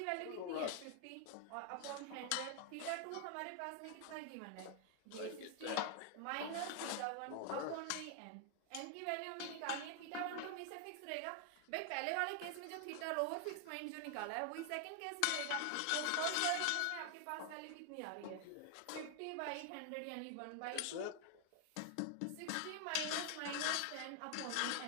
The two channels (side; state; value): both; different; correlation 0.00